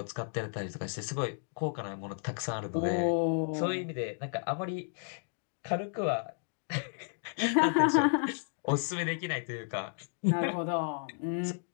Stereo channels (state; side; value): silent; right; 56 dB below the other